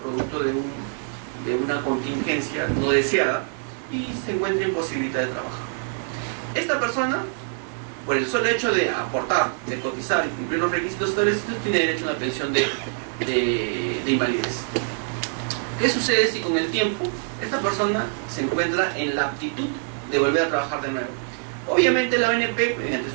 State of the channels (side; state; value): left; silent; 61 dB below the other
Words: producto de una contingencia no deseada y se encuentra imposibilitada de trabajar. Esta persona, por el solo hecho de aportar, de cotizar y cumplir los requisitos establecidos, tiene derecho a una pensión de invalidez. ¿Qué sucede si con el tiempo esta persona se encuentra en la aptitud de volver a trabajar de nuevo? Obviamente la ONP, mediante